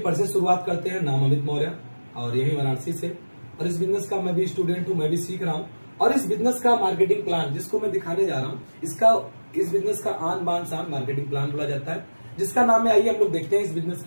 से शुरुआत करते हैं। नाम अमित मौर्य और यही वाराणसी से, और इस बिजनेस का मैं भी स्टूडेंट हूँ, मैं भी सीख रहा हूँ। और इस बिजनेस का मार्केटिंग प्लान जिसको मैं दिखाने जा रहा हूँ, इस बिजनेस का आन बान शान मार्केटिंग प्लान बोला जाता है, जिसका नाम है, आइए हम लोग देखते हैं इस बिजनेस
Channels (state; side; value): inverted; both; correlation -1.00